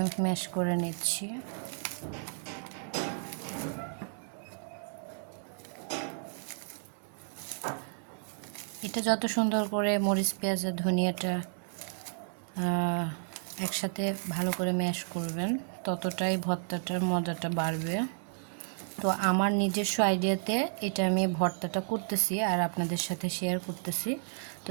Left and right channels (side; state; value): left; silent; digital silence